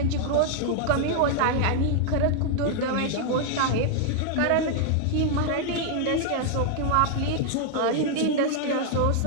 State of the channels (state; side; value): different; both; correlation 0.00